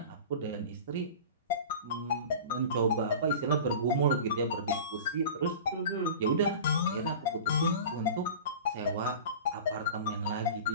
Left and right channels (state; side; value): inverted; both; correlation -0.35